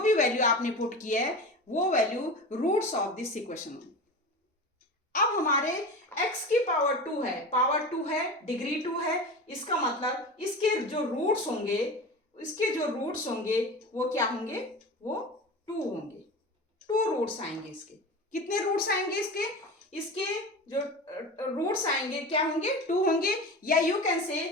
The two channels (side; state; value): both; normal; correlation 0.30